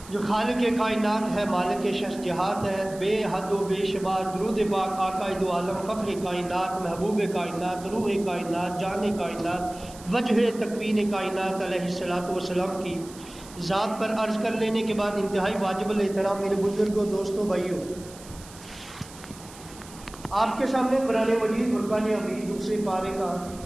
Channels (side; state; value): right; noise; hiss, 19 dB below the sound